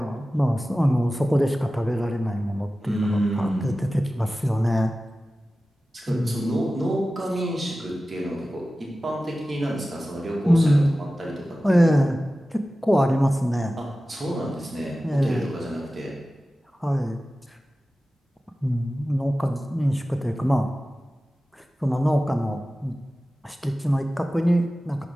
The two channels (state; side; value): normal; both; correlation 0.96